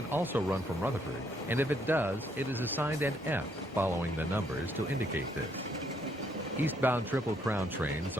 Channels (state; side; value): normal; both; correlation 0.71